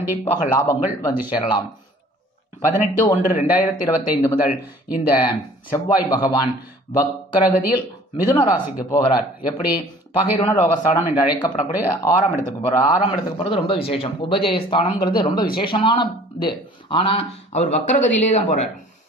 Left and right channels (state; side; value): normal; both; correlation 0.51